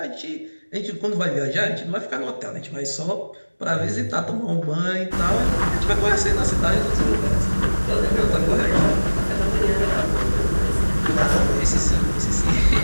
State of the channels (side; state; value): both; inverted; correlation -1.00